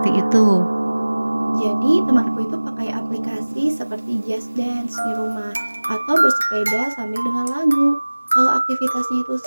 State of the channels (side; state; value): both; inverted; correlation -1.00